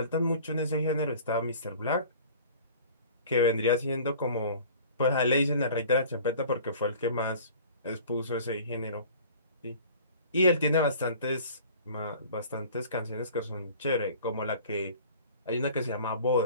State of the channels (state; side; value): inverted; both; correlation -0.46